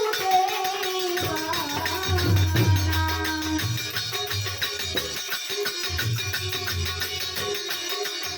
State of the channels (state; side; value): identical; both; correlation 1.00